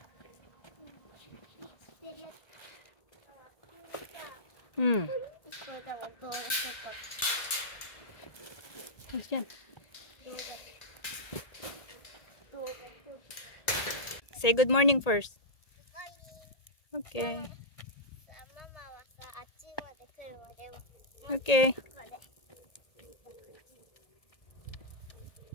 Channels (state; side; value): late; right; 1.8 ms